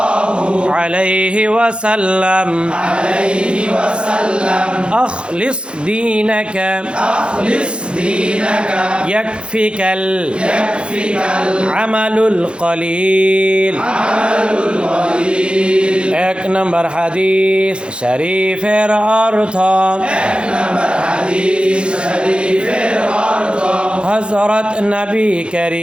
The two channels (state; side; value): late; left; 0.056 ms